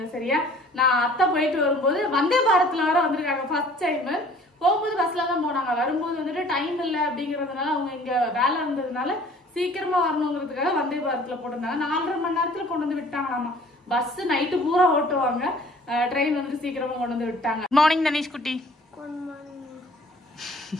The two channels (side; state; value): both; normal; correlation 0.52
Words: சரியா? நான் அத்தா போயிட்டு வரும்போது வந்தே பாரத்ல வர வந்திருக்காங்க ஃபர்ஸ்ட் டைம். போகும்போது பஸ்ல தான் போனாங்க. வரும்போது வந்துட்டு டைம் இல்லை அப்படிங்கறதுனால அவங்க இங்க வேலை இருந்ததுனால சீக்கிரமா வரணுங்கிறதுக்காக வந்தே பாரத்ல போட்டிருந்தாங்க. 4.5 மணி நேரத்துல கொண்டு வந்து விட்டாங்களாமா. பஸ் நைட்டு பூரா ஓட்டுவாங்க, ட்ரெயின் வந்துட்டு சீக்கிரமா கொண்டு வந்து விட்டாங்க. மார்னிங் தனிஷ் குட்டி.